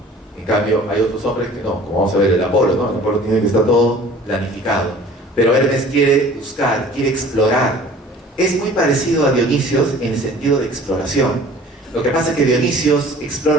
En cambio, hay otros hombres que no, como vamos a ver el Apolo, ¿no? El Apolo tiene que estar todo planificado. Pero Hermes quiere buscar, quiere explorar. Es muy parecido a Dionisios en el sentido de exploración. Lo que pasa es que Dionisios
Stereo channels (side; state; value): both; normal; correlation 0.47